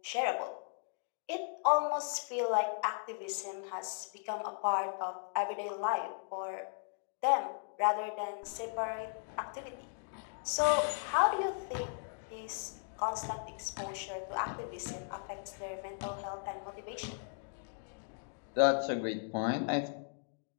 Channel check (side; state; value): right; silent; digital silence